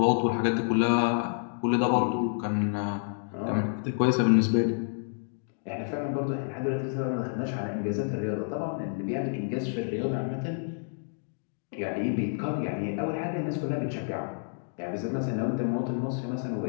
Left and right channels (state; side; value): silent; right; digital silence